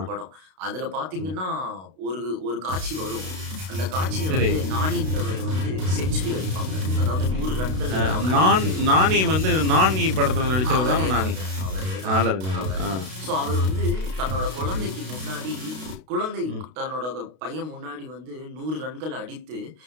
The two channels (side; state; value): left; late; 32 ms